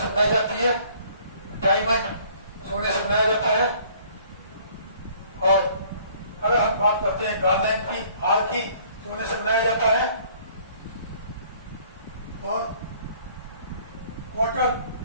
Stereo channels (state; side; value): inverted; both; correlation -0.57